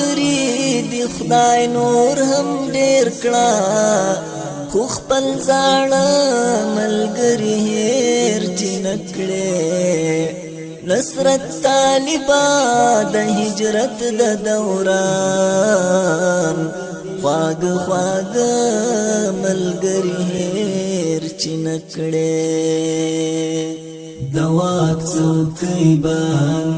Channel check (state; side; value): identical; both; correlation 1.00